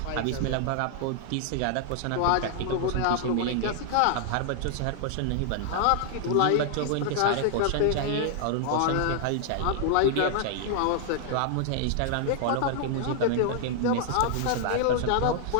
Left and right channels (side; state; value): both; different; correlation 0.00